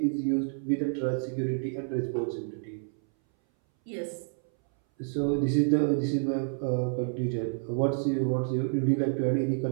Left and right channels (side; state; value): left; silent; 59 dB below the other